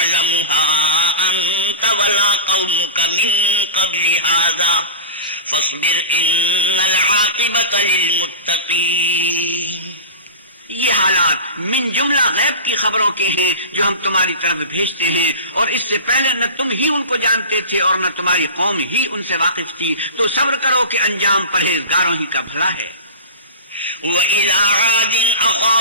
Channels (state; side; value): inverted; both; correlation -0.31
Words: أَنْتَ وَلَا قَوْمُكَ مِنْ قَبْلِ هَذَا فَاصْبِرْ إِنَّ الْعَاقِبَةَ لِلْمُتَّقِينَ۔ یہ حالات من جملہ غیب کی خبروں کے ہیں جو ہم تمہاری طرف بھیجتے ہیں، اور اس سے پہلے نہ تم ہی ان کو جانتے تھے اور نہ تمہاری قوم ہی ان سے واقف تھی، تو صبر کرو کہ انجام پرہیزگاروں ہی کا بھلا ہے۔ وَإِلَىٰ عَادٍ